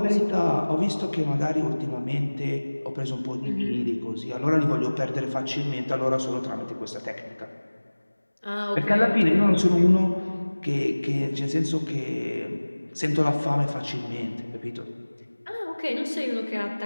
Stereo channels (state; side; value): inverted; both; correlation -1.00